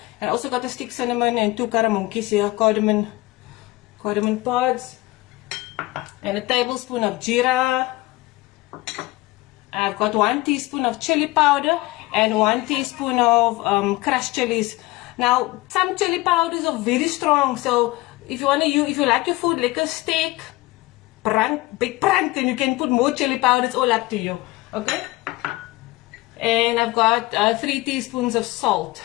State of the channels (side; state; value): right; quieter; 20.2 dB